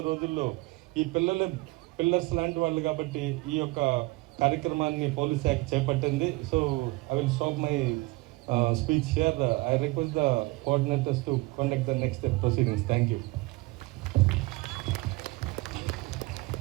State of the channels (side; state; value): left; quieter; 23.1 dB